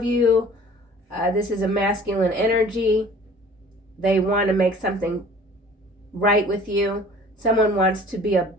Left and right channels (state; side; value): normal; both; correlation 0.49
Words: you, this is a masculine energy. They want to make something right with you. Someone wants to be a